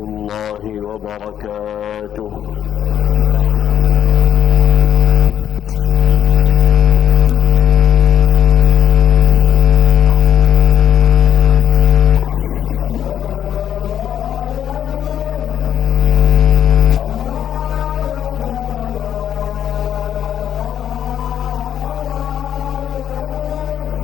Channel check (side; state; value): right; quieter; 10.0 dB